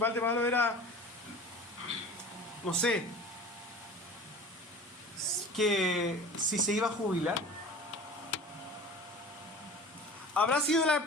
de Pablo era, no sé, que si se iba a jubilar? ¿Habrá sido la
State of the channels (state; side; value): normal; both; correlation 0.39